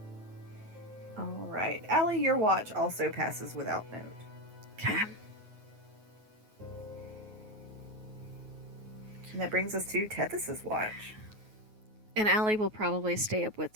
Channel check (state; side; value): late; left; 9.4 ms